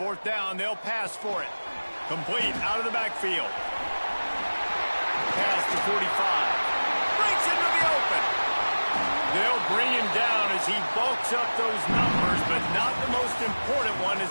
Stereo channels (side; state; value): both; inverted; correlation -1.00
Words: down, they'll pass for it. Complete out of the backfield. Pass to 45. Breaks into the open. They'll bring him down as he bulks up those numbers, but not the most important one